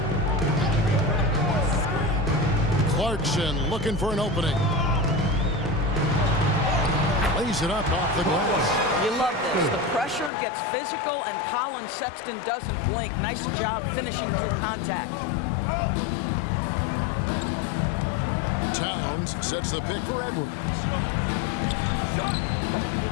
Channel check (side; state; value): right; drops out; at 10.3 s